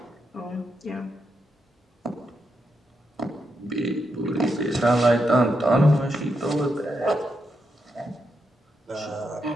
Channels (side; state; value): both; normal; correlation 0.83